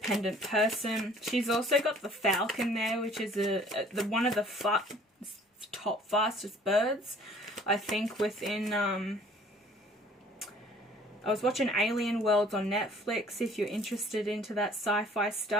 person. She's also got the falcon there, which is one of the top fastest birds, I think, within I was watching Alien Worlds on Netflix. If you're interested into that sci-fi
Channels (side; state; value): both; normal; correlation 0.54